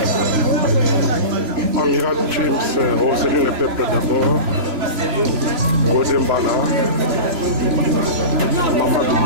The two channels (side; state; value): left; late; 2.9 ms